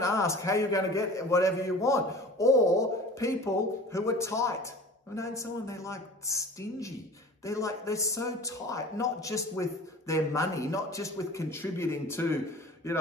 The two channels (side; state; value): both; normal; correlation 0.40